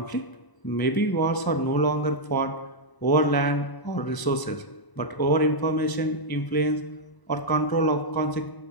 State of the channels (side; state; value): right; late; 1.0 ms